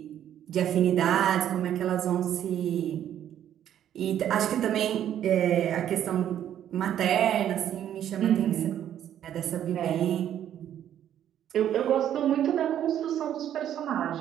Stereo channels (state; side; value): quieter; left; 10.6 dB